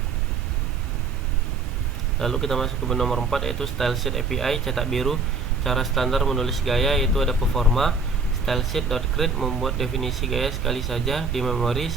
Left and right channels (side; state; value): left; quieter; 4.2 dB